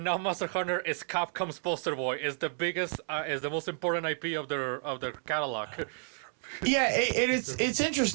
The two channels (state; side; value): silent; left; 57 dB below the other